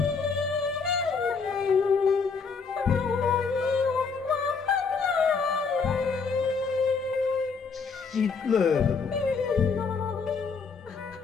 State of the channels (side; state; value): right; quieter; 5.2 dB